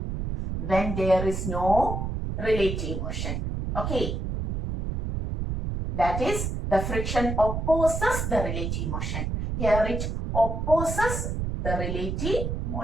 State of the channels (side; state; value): right; noise; rumble, 2 dB below the sound